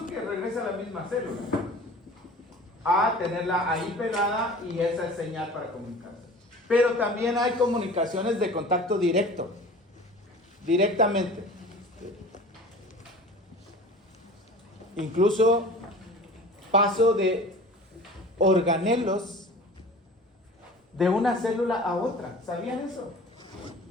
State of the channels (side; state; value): both; normal; correlation 0.41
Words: que regrese a la misma célula, a tenerla ahí pegada y esa es señal para comunicarse. Pero también hay comunicaciones de contacto directo, directamente. Incluso paso de organelos de una célula a otra. ¿Sabían eso?